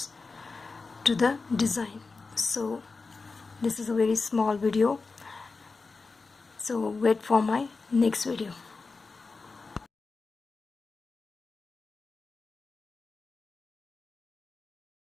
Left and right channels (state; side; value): quieter; right; 4.1 dB